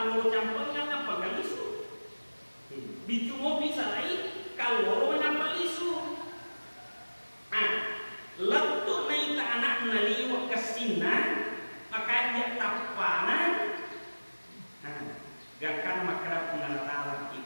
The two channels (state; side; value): inverted; both; correlation -1.00